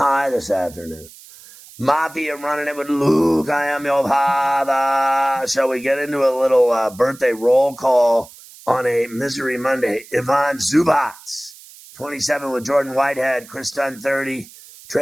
this afternoon. Mafia running it with Luke. I am your father. Shall we get into a little birthday roll call on a Misery Monday? Ivan Zubac, 27 with Jordan Whitehead. Chris Dunn, 30.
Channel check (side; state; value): right; noise; hiss, 21 dB below the sound